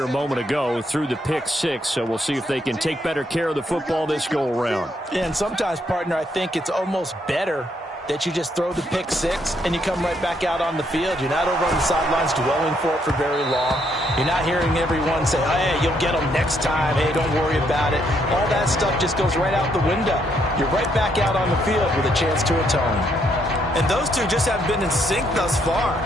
a moment ago through the pick-6, so we'll see if they can take better care of the football this go-around. Yeah, and sometimes, partner, I think it's almost better that you just throw the pick-6 and you come right back out on the field. You're not over on the sidelines dwelling for it for very long. You're not hearing everyone say, hey, you'll get them next time. Hey, don't worry about it. All that stuff just goes right out the window. You're right back out on the field with a chance to atone. And those two just haven't been in sync thus far.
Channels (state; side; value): normal; both; correlation 0.73